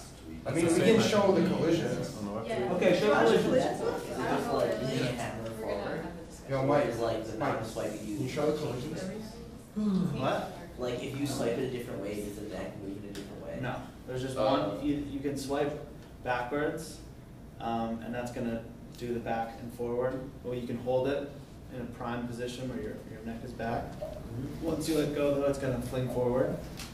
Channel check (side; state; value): both; identical; correlation 1.00